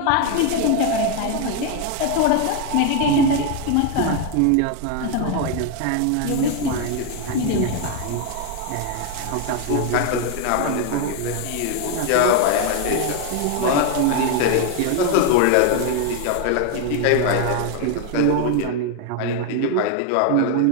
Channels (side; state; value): both; different; correlation 0.01